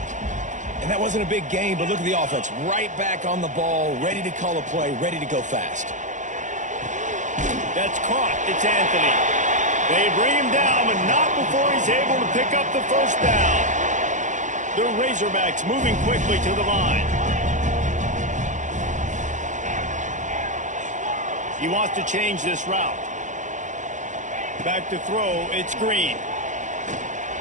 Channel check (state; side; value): late; left; 0.36 ms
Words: And that wasn't a big game, but look at the offense. Right back on the ball, ready to call a play, ready to go fast. That's caught. It's Anthony. They bring him down, but not before he's able to pick up the first down. The Razorbacks moving quickly to the line. He wants to change this route. Back to throw. It's Green.